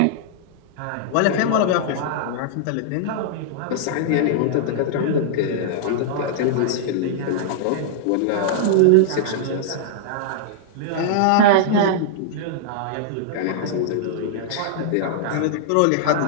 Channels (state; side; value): different; both; correlation -0.01